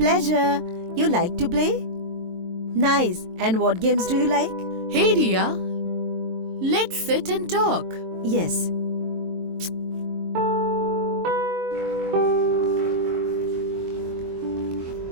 You like to play? Nice. And what games do you like? Hey, Ria. Let's sit and talk. Yes.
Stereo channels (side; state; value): left; late; 22 ms